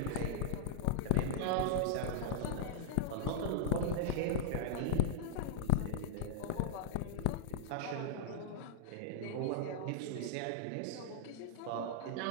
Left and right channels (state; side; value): different; both; correlation -0.01